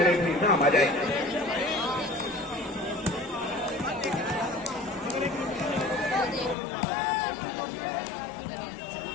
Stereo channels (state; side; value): drops out; right; at 6.6 s